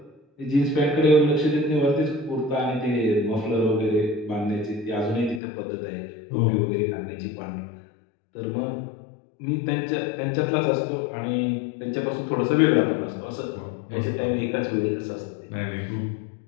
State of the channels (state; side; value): drops out; right; at 5.4 s